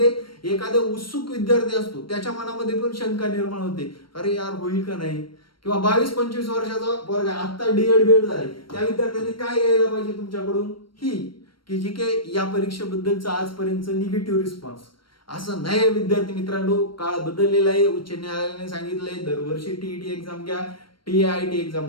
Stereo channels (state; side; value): late; right; 0.73 ms